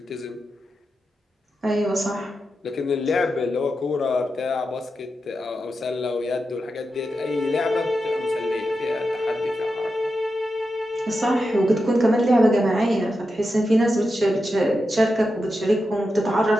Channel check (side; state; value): both; normal; correlation 0.89